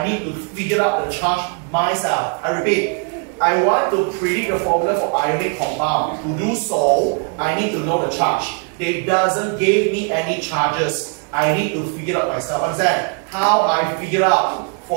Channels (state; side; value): quieter; left; 38.9 dB